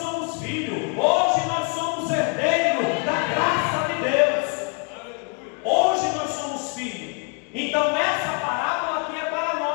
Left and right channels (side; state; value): right; quieter; 38.4 dB